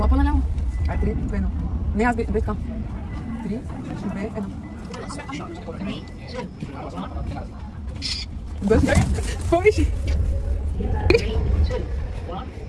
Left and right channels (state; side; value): identical; both; correlation 1.00